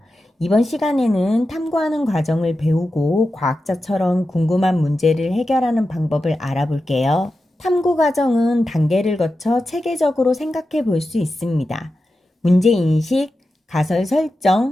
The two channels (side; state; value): both; normal; correlation 0.91